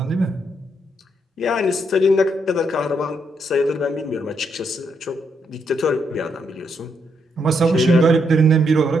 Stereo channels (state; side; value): normal; both; correlation 0.77